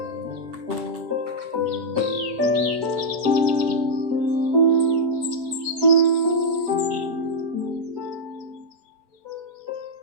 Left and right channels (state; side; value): late; left; 7.9 ms